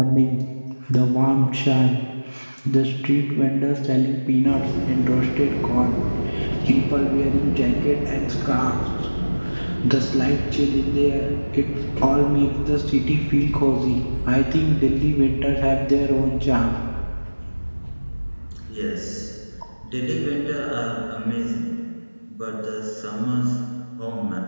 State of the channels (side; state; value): both; inverted; correlation -1.00